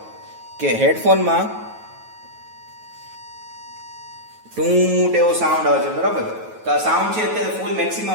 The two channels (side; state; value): left; late; 9.3 ms